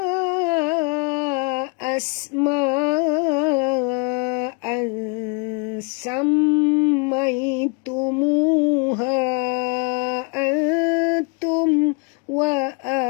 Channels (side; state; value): right; quieter; 32.2 dB